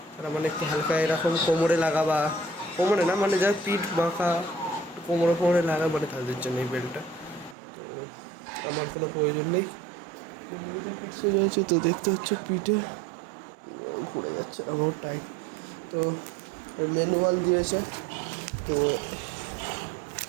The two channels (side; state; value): left; drops out; at 7.6 s